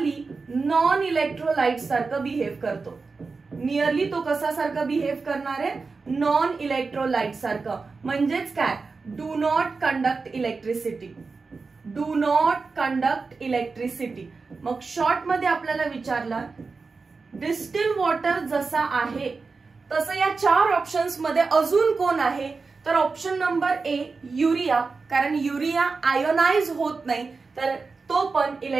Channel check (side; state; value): left; quieter; 4.4 dB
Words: non electrolyte सारखं बिहेव करतो. नियरली तो कसा सारखं बिहेव करणार आहे? नॉन इलेक्ट्रोलाइट सारखं. म्हणजेच काय? Do not conduct electricity. Do not conduct electricity. मग शॉर्ट मध्ये आपल्याला विचारलं डिस्टिल वॉटर जसा आहे तसं या 4 ऑप्शन्स मध्ये अजून कोण आहे? तर ऑप्शन नंबर A युरिया, कारण युरिया आयोनाइज होत नाही, तर तो पण